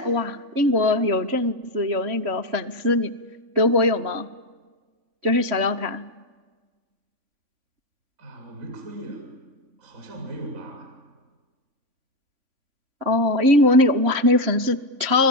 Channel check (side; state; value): left; late; 3.5 ms